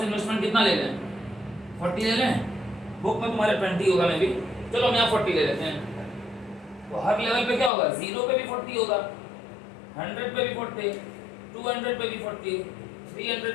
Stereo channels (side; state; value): right; drops out; at 7.7 s